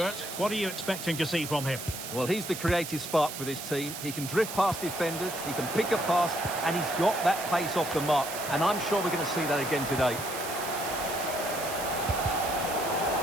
What are you expecting to see from him? Well, he's the creative spark for this team. He can drift past defenders, he can pick a pass, and he's got that pace off the mark. And I'm sure we're going to see that again today.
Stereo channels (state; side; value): noise; right; hiss, 8 dB below the sound